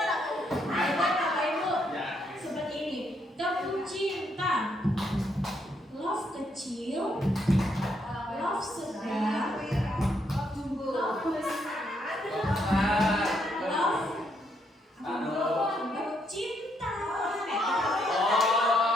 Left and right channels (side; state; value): both; normal; correlation 0.75